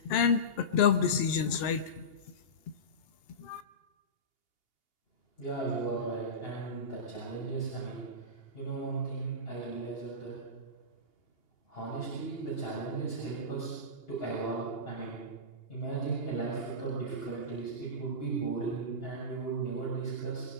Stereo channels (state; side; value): late; right; 2.8 ms